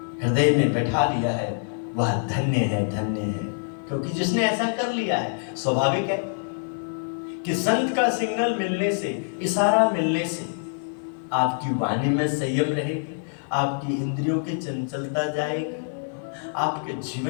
हृदय में बैठा लिया है वह धन्य है, धन्य है। क्योंकि जिसने ऐसा कर लिया है, स्वाभाविक है कि संत का सिग्नल मिलने से, इशारा मिलने से आपकी वाणी में संयम रहेगी, आपकी इंद्रियों की चंचलता जाएगी, आपके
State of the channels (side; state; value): right; silent; digital silence